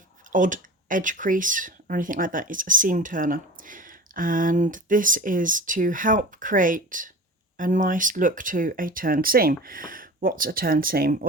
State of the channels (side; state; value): both; normal; correlation 0.36